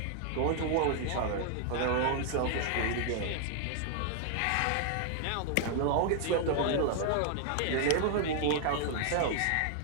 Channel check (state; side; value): different; both; correlation 0.00